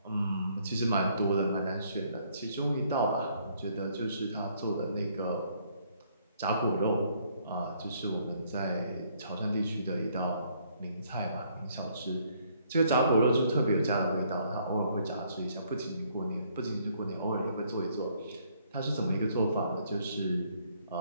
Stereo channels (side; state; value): both; inverted; correlation -0.66